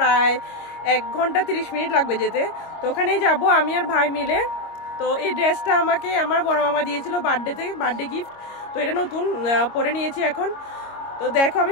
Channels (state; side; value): late; right; 25 ms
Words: 1 ঘন্টা 30 মিনিট লাগবে যেতে। তো ওখানেই যাব আমি আর ভাই মিলে। তো এই ড্রেসটা আমাকে আমার বড় মামা দিয়েছিল বার্থডে গিফট। তো এটা নতুন পরে নিয়েছি এখন। তো দেখো, আমি